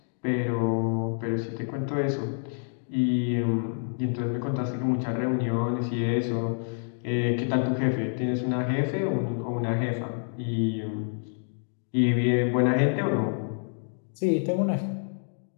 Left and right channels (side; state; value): right; silent; digital silence